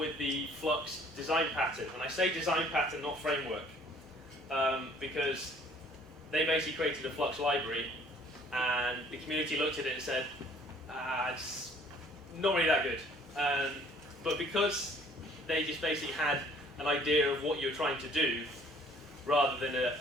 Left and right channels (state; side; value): normal; both; correlation 0.57